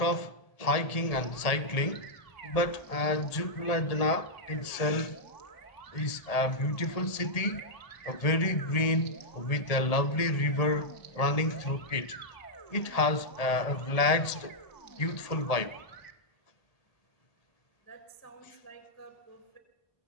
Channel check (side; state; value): right; late; 1.7 ms